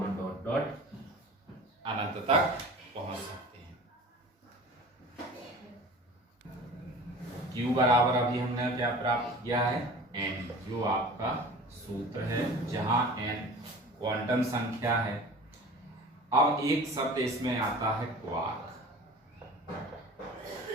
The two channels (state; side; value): normal; both; correlation 0.40